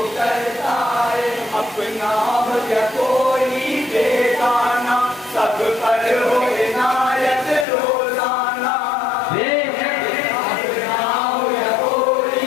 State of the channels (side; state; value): right; drops out; at 7.7 s